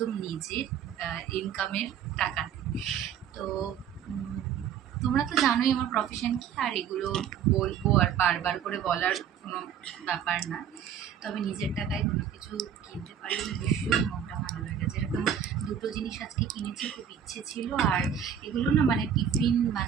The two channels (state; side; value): quieter; left; 8.5 dB